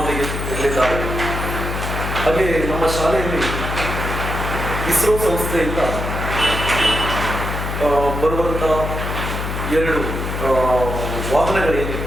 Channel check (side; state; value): left; noise; hum, 4 dB below the sound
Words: ಇರಲಿದ್ದಾರೆ. ಹಾಗೆ ನಮ್ಮ ಶಾಲೆಯಲ್ಲಿ ಇಸ್ರೋ ಸಂಸ್ಥೆಯಿಂದ ಬರುವಂಥ 2 ವಾಹನಗಳೇನಿವೆ